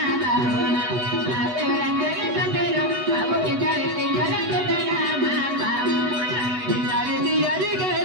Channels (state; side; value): late; left; 8.0 ms